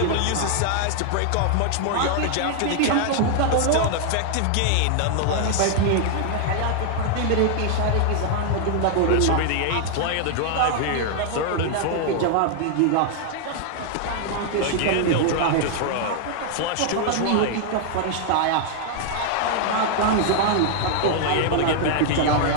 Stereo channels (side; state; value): both; different; correlation 0.00